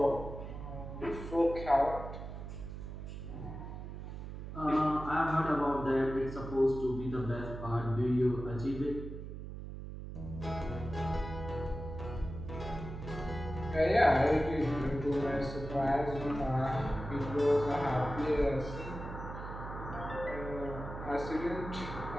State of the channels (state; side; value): noise; right; hum, 9 dB below the sound